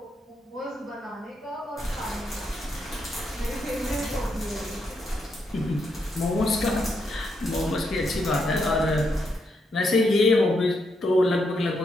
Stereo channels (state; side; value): normal; both; correlation 0.80